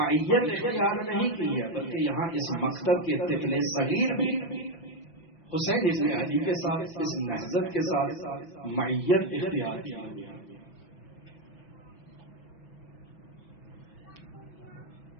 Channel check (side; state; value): right; late; 5.9 ms